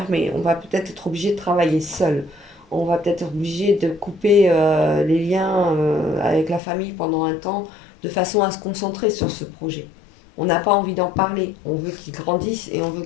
On va peut-être être obligé de travailler seul. On va peut-être être obligé de couper les liens avec la famille pendant un temps de façon à se concentrer sur ce projet. On n'a pas envie d'en parler. On veut qu'il grandisse et on veut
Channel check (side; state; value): right; drops out; at 6.6 s